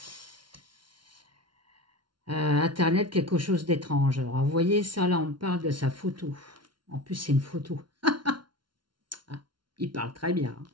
Internet, quelque chose d'étrange. Alors, vous voyez ça, là, on parle de sa photo. En plus, c'est une photo. Ah, il parle très bien. Hein.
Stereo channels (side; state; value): left; late; 0.72 ms